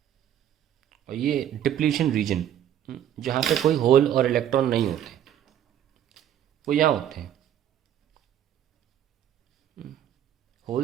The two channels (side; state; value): left; quieter; 10.6 dB